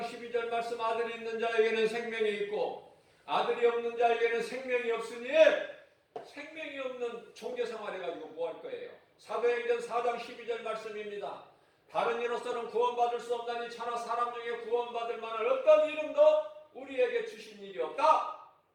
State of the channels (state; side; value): identical; both; correlation 1.00